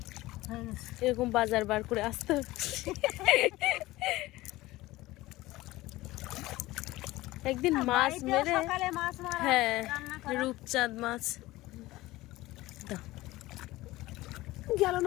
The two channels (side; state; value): right; quieter; 18.3 dB